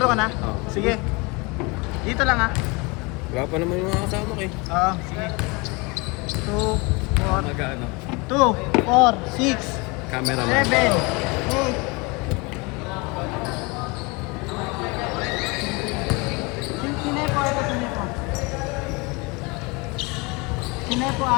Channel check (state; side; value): quieter; right; 27.4 dB